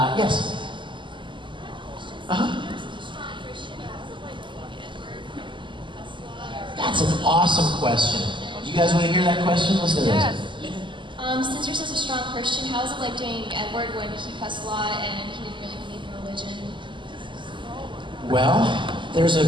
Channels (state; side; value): late; left; 0.24 ms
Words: Uh-huh. That's an awesome question. You guys want to hear that question? Listen to this. Since you're such a strong Christian, how was it like doing Edward when he cussed a lot and he didn't really believe in religion? Well, there's a